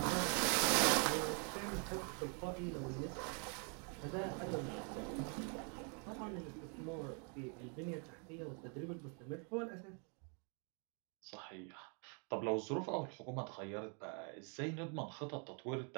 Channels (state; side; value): quieter; left; 38.5 dB